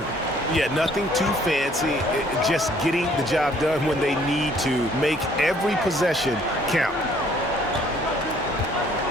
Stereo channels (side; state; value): both; normal; correlation 0.61